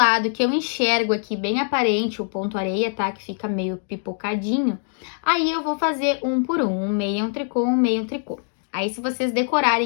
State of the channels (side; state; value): right; silent; digital silence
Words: que eu enxergo aqui bem aparente, o ponto areia, tá? Que fica meio pipocadinho, aí eu vou fazer um por um meia, um tricô, um meia, um tricô. Aí se vocês